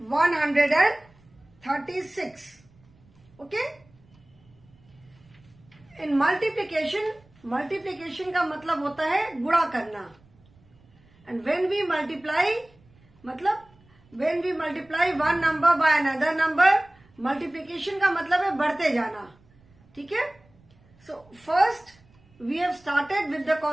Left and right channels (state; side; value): noise; right; rumble, 30 dB below the sound